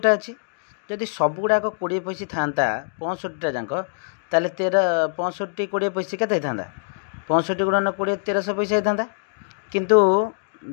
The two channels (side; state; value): right; silent; digital silence